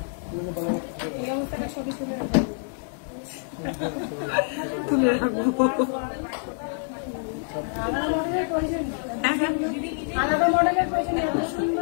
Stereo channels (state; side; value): silent; right; digital silence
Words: তুলে রাখবো। আলাদা মডেলের প্রয়োজন এত